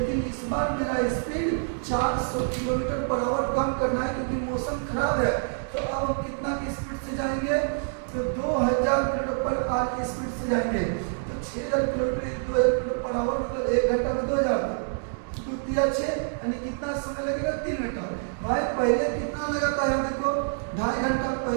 इस बार मेरा स्पीड 400 किलोमीटर पर आवर कम करना है क्योंकि मौसम खराब है। तो अब हम कितना की स्पीड से जाएंगे, तो 2000 किलोमीटर पर आवर की स्पीड से जाएंगे। तो 6000 किलोमीटर 2000 किलोमीटर पर आवर मतलब 1 घंटा में 2000, 2 × 6 यानी कितना समय लगेगा, 3 घंटा। भाई पहले कितना लगा था, यहाँ देखो 2.5 घंटा,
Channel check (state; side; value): silent; left; digital silence